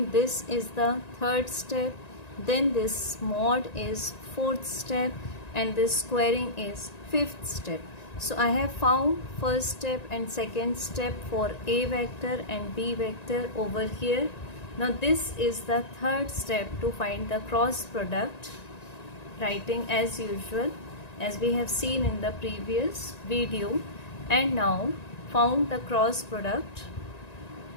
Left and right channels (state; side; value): late; right; 1.9 ms